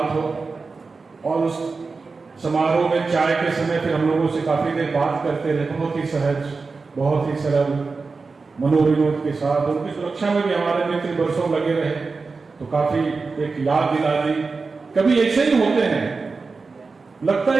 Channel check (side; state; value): left; quieter; 4.3 dB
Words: हो। और उस समारोह में चाय के समय फिर हम लोगों से काफी देर बात करते रहे, बहुत ही सहज, बहुत ही सरल, मनोविनोद के साथ। उनकी सुरक्षा में भी हमारे मित्र वर्षों लगे रहे, तो काफी एक याद दिला दी। कभी ऐसे ही होते हैं, लगता